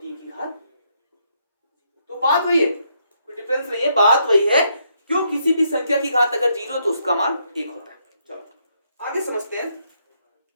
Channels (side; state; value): both; inverted; correlation -0.75